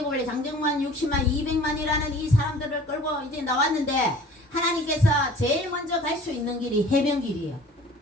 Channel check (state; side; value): normal; both; correlation 0.47